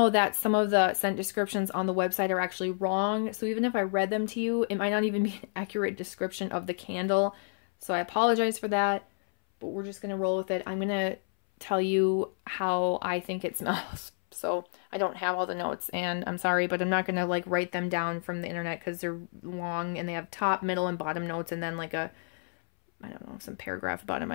that some of the scent descriptions on the website are actually wrong, so even if I read them to you, it might not even be an accurate description of the candle, so I apologize for that, but we're just going to roll with it. I'm going to tell you how I think it smells. So I don't have all the notes, and I'm sorry, but I'm not going to like write them down from the internet because they're long and they have top, middle, and bottom notes, and then like a, I don't know, some paragraph bottom,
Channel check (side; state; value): right; silent; 58 dB below the other